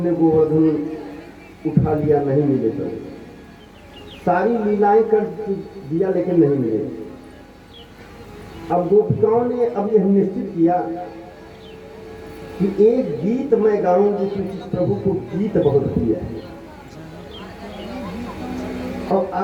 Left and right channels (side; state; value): both; identical; correlation 1.00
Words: गोवर्धन उठा लिया, नहीं मिले तो। सारी लीलाएं कर दिया लेकिन नहीं मिले। अब गोपिकाओं ने अब यह निश्चित किया कि एक गीत मैं गाऊंगी, क्योंकि प्रभु को गीत बहुत प्रिय है। और